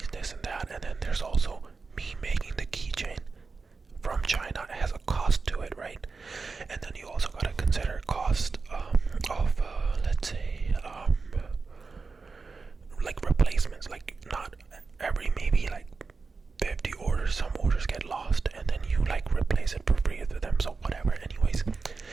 this and that. And then there's also me making the keychain from China. It has a cost to it, right? And then you also gotta consider cost of let's say like replacements. Like, not every, maybe like 50 orders, some orders get lost, and then you like replace it for free with them. So whatever. Anyways,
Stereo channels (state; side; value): quieter; left; 4.4 dB